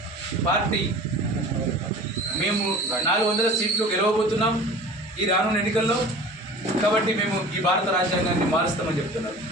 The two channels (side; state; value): both; normal; correlation 0.41